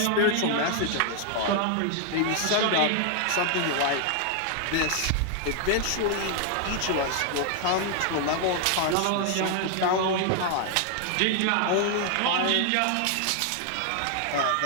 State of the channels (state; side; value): different; both; correlation 0.00